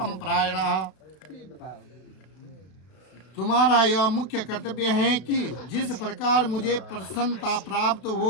प्रायणः। तुम्हारा यह मुख्य कर्तव्य है कि जिस प्रकार मुझे प्रसन्नता प्राप्त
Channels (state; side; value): late; right; 32 ms